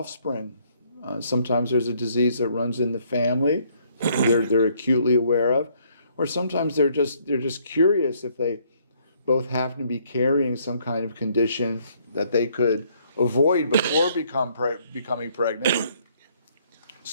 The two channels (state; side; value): inverted; both; correlation -0.66